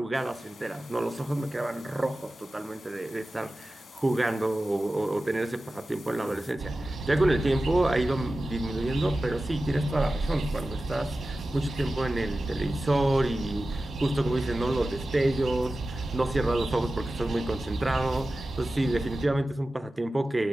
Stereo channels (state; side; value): normal; both; correlation 0.95